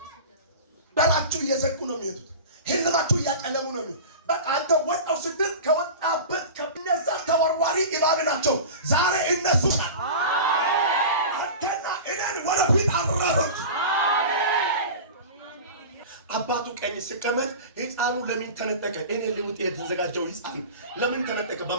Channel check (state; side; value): inverted; both; correlation -0.32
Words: በላችሁ እየዘጉ ነው የሚሄዱት። ህልማችሁ እያጨለሙ ነው የሚሄዱት። በቃ አንተ ወጣው ስትል ከወጣበት ከነዛ ተወርዋሪ እባብ ናቸው። ዛሬ እነሱ አንተና እኔን ወደፊት አራሩት። አባቱ ቀኝ ሲቀመጥ ሕፃኑ ለምን ተነጠቀ? እኔ ልውጥ የተዘጋጀው ሕፃን ለምን ተነጠቀ?